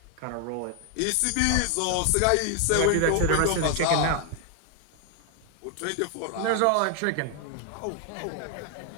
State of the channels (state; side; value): different; both; correlation 0.00